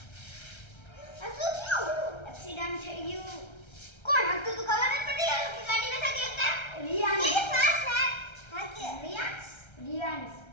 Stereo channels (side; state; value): right; late; 1.3 ms